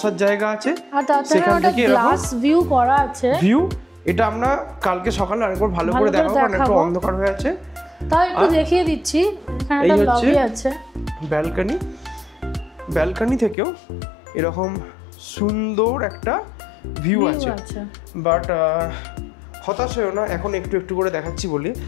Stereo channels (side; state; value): right; drops out; at 13.6 s